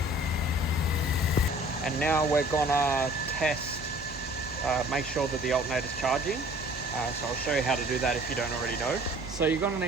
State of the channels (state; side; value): noise; right; hum, 15 dB below the sound